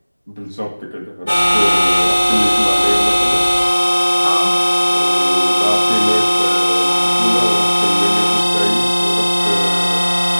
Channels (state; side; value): inverted; both; correlation -1.00